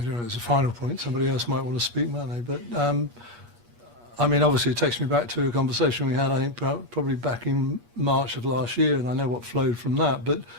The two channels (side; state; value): left; late; 8.4 ms